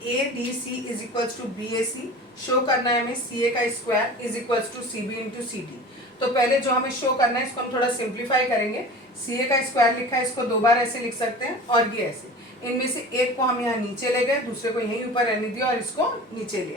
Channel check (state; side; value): normal; both; correlation 0.37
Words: ADC is equals to BAC. Show करना है हमें CA का square is equals to CB into CD. तो पहले जो हमें शो करना है इसको हम थोड़ा सिंप्लीफाई करेंगे. CA का स्क्वायर लिखा है, इसको दो बार ऐसे लिख सकते हैं और ये ऐसे. इनमें से एक को हम यहाँ नीचे ले गए, दूसरे को यहीं ऊपर रहने दिया और इसको नीचे